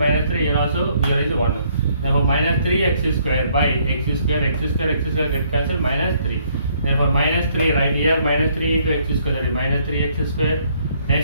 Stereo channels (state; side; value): inverted; both; correlation -0.67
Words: 3, here also here is 1. Therefore minus 3x square by x square get cancelled, minus 3. Therefore minus 3 right here, minus 3 into x square, that is minus 3x square.